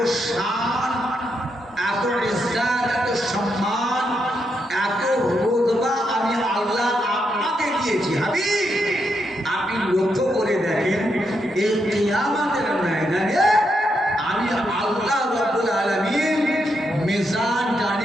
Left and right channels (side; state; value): both; normal; correlation 0.81